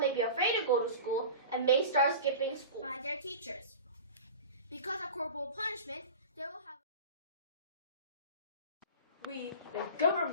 be afraid to go to school and may start skipping school by their teachers. Because of corporal punishment, they will have... We, the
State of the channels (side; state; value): both; inverted; correlation -0.34